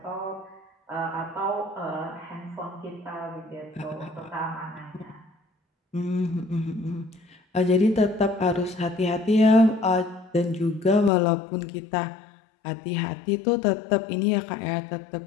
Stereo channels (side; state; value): right; drops out; at 11.1 s